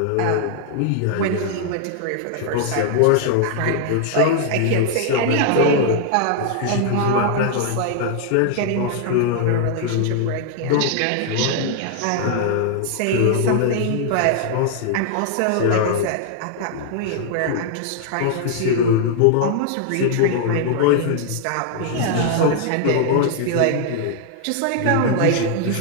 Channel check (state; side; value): different; both; correlation -0.01